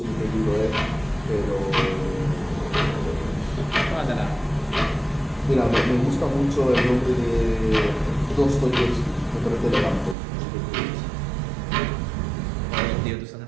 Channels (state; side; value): drops out; left; at 10.2 s